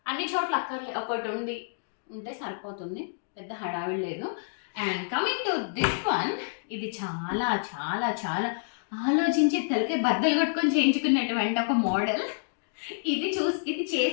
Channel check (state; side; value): silent; right; digital silence